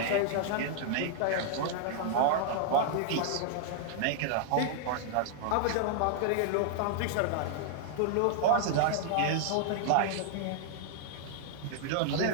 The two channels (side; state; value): both; different; correlation -0.01